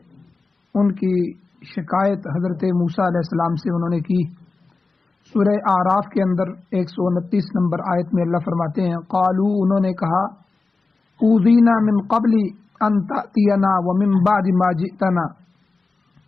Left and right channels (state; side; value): quieter; right; 3.9 dB